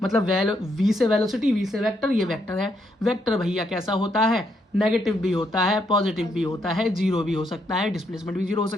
मतलब वी से वेलोसिटी, वी से वेक्टर, ये वेक्टर है। वेक्टर भैया कैसा होता है? नेगेटिव भी होता है, पॉजिटिव भी होता है, जीरो भी हो सकता है, डिस्प्लेसमेंट भी जीरो हो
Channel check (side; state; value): both; normal; correlation 0.76